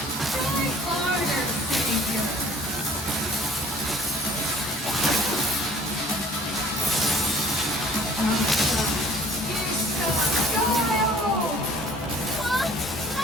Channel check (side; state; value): both; normal; correlation 0.52